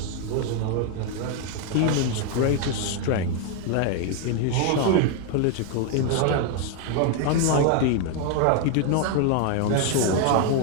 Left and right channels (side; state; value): both; different; correlation 0.01